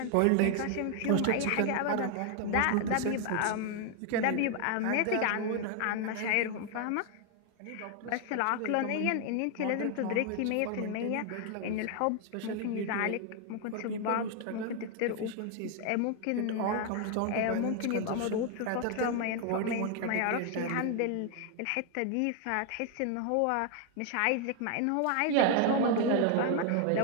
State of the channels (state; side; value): different; both; correlation 0.01